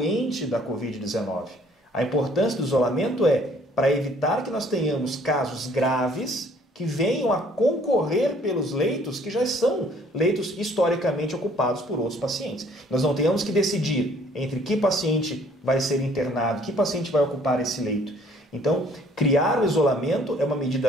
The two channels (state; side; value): normal; both; correlation 0.59